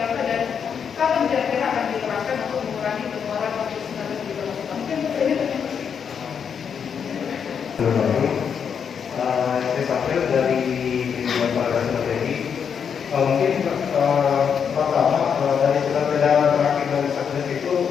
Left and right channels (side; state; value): right; quieter; 7.1 dB